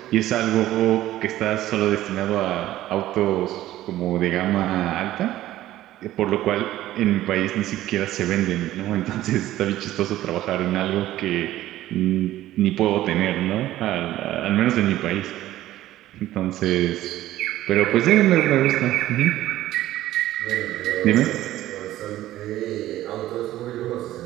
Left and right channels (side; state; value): left; quieter; 14.5 dB